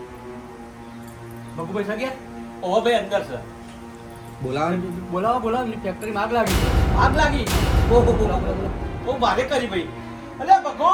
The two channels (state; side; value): identical; both; correlation 1.00